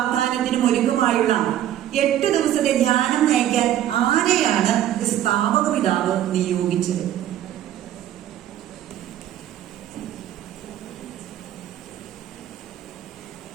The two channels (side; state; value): left; quieter; 11.8 dB